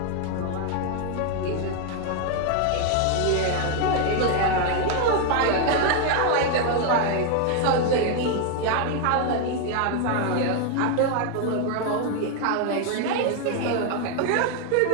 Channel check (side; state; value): both; different; correlation 0.01